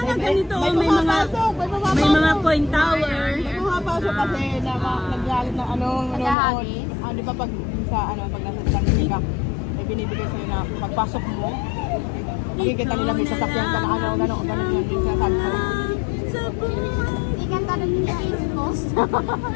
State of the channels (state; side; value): drops out; right; at 6.4 s